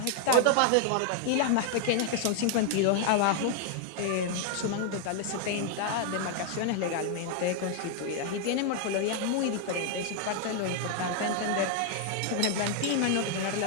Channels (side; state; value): both; different; correlation 0.00